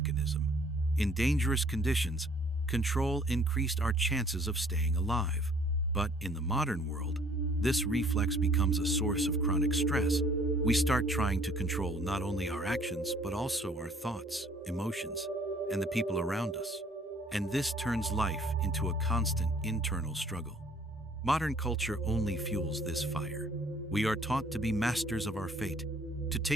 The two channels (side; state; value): both; normal; correlation 0.58